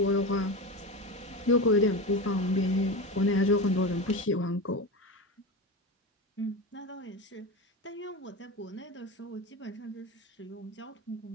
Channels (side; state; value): both; normal; correlation 0.23